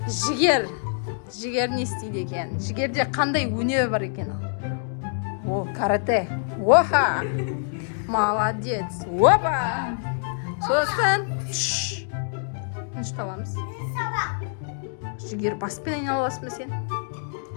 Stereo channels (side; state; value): right; silent; digital silence